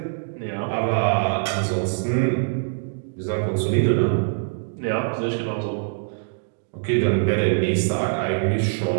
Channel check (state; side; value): silent; left; digital silence